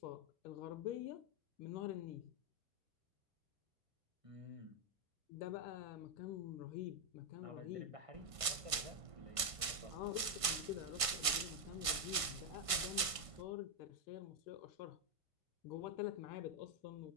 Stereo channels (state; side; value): late; left; 1.5 ms